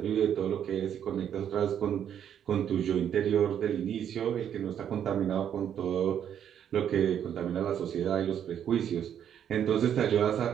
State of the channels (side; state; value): left; quieter; 9.2 dB